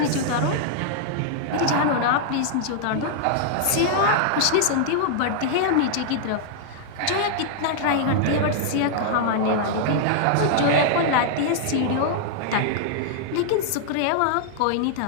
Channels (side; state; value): both; different; correlation -0.01